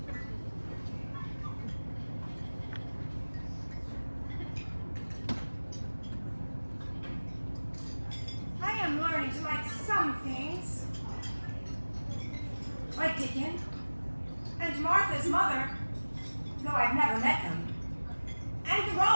I am learning to like some things, like Dickon and Martha's mother, though I've never met them, and the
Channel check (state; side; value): inverted; both; correlation -1.00